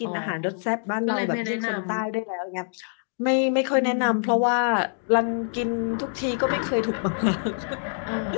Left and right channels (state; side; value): silent; right; digital silence